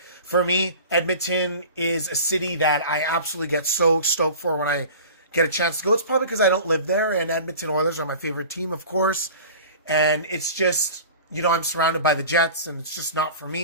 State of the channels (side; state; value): both; inverted; correlation -0.39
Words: for me, Edmonton is a city that I absolutely get so stoked for when I get a chance to go. It's probably because I don't live there, and Edmonton Oilers are my favorite team, of course. And it's just, I'm surrounded by the Jets, and it's just not for